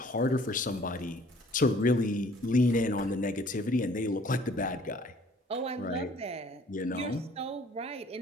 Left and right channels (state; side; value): normal; both; correlation 0.56